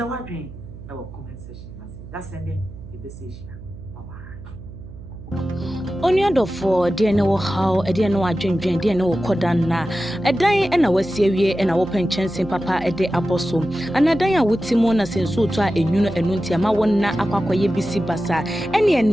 wadwen e wo comment section na say that send the message bye bye. Only for dear no how a dear no adwendwen dear no kodan na edan na wasie wie na wo penchen papa ede aboso anadan a wutimo na senso to a enwuno enunti ama won na akwakoye bisi basa ene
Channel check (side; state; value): right; noise; hum, 15 dB below the sound